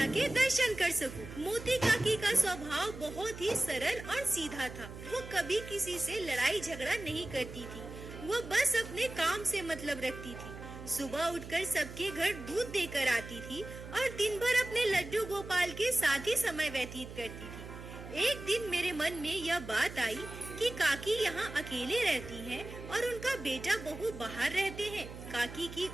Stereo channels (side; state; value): right; noise; hum, 12 dB below the sound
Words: के दर्शन कर सकूं। मोती काकी का स्वभाव बहुत ही सरल और सीधा था। वो कभी किसी से लड़ाई झगड़ा नहीं करती थी। वो बस अपने काम से मतलब रखती थी। सुबह उठकर सबके घर दूध देकर आती थी और दिन भर अपने लड्डू गोपाल के साथ ही समय व्यतीत करती थी। एक दिन मेरे मन में यह बात आई कि काकी यहाँ अकेले रहती हैं और उनका बेटा बहू बाहर रहते हैं। काकी की